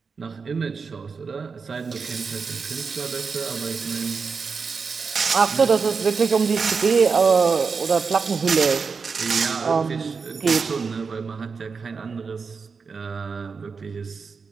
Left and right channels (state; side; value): quieter; left; 5.2 dB